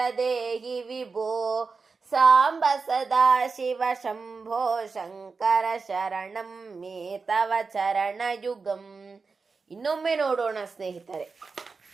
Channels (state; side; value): quieter; left; 4.6 dB